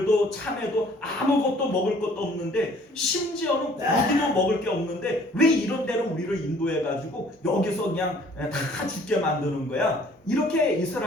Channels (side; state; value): both; normal; correlation 0.56